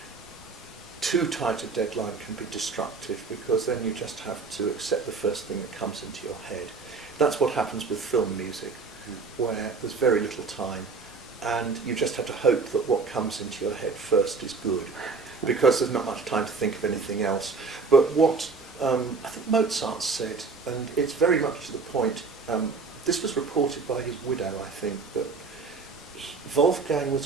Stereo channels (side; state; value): left; quieter; 4.5 dB